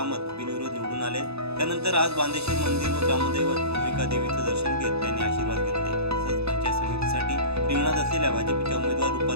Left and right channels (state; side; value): late; left; 0.79 ms